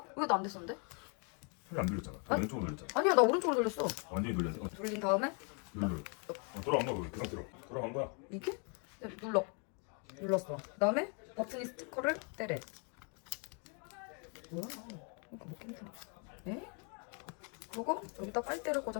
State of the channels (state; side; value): quieter; right; 37.9 dB